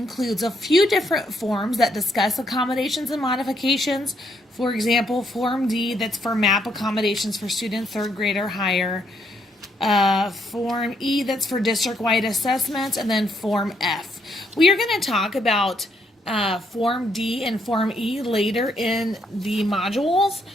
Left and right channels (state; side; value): normal; both; correlation 0.73